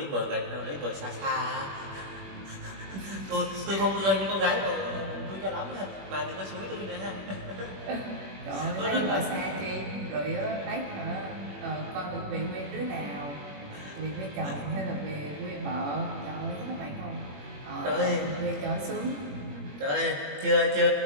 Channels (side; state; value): left; late; 21 ms